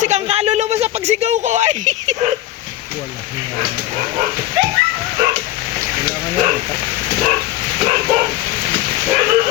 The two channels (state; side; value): quieter; right; 14.9 dB